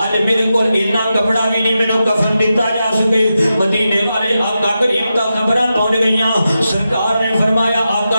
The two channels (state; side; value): inverted; both; correlation -0.89